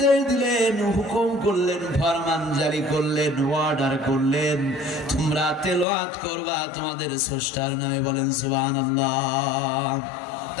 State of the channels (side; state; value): right; drops out; at 5.9 s